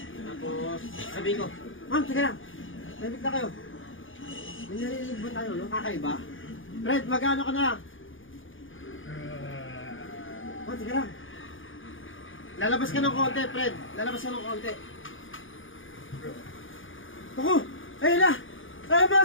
Tapos sabihin ko, ma'am, teka lang. Tahimik na kayo. May narinig ba tayo, no? Kakaiba? Fred, magkano ka na? Oh, teka lang. Lalabas ka ng konti, Fred. Lalabas ka ng konti. Ako! Ayun na! Ayun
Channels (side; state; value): right; late; 0.58 ms